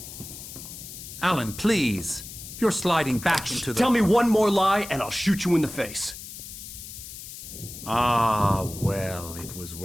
Alan, please. You're sliding back into the... Tell me one more lie and I'll shoot you in the face. Ah, well, it was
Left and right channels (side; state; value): left; noise; hiss, 12 dB below the sound